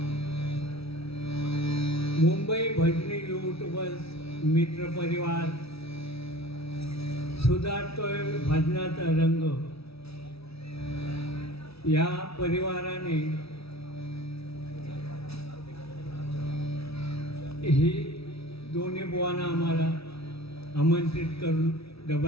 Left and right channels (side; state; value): right; late; 0.77 ms